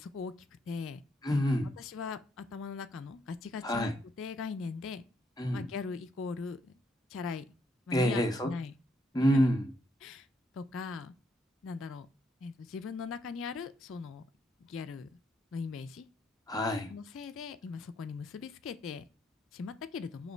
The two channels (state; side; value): normal; both; correlation 0.75